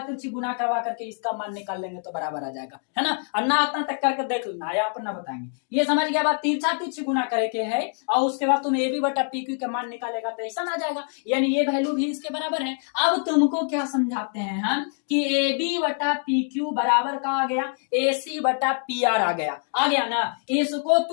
गुना करवा करके इसका मान निकाल लेंगे तो बराबर आ जाएगा, है ना। और ना इतना तक करके देख लेना, या अपन ना बताएंगे, ये समझ गया बात, तिरछा तिरछी गुना करे के है और उसके बाद तुम ए बी बटा पी क्यू का मान निकालेगा तो ऐसा आ जाएगा, यानी ये वैल्यू भी इसके बराबर है। अब तुमको क्या समझाते हैं हम कि ए बी बटा पी क्यू बराबर का आ गया ए सी बटा पी आर आ गया ना। इसको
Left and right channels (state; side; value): silent; right; 56 dB below the other